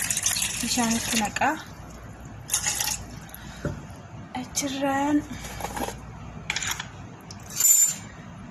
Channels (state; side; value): identical; both; correlation 1.00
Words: بشان تنقا أجران